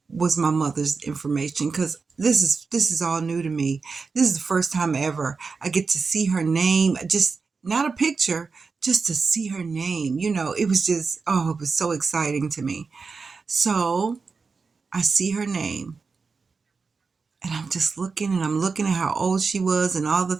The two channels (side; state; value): left; quieter; 4.7 dB